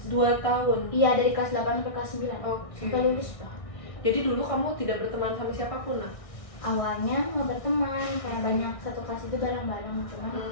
2 tahun. Iya, dari kelas 8 sampai kelas 9 Oke. sampai lulus lah. Jadi dulu kamu tidak berteman sama siapapun, nah? Awalnya nggak berteman, kayak banyak satu kelas itu bareng-bareng, cuman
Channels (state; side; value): late; right; 1.6 ms